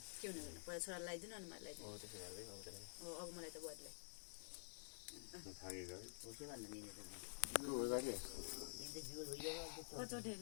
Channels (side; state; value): right; silent; digital silence